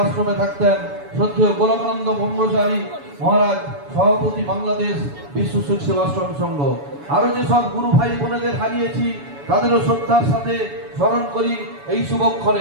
আশ্রমে থাকতেন। শ্রদ্ধেয় গোলকানন্দ ব্রহ্মচারী মহারাজ সভাপতি বাংলাদেশ বিশ্বসুখ সেবাশ্রম সংঘ। আরো যেসব গুরু ভাই বোনেদের হারিয়েছি তাদেরও শ্রদ্ধার সাথে স্মরণ করি এই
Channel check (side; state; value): left; late; 7.0 ms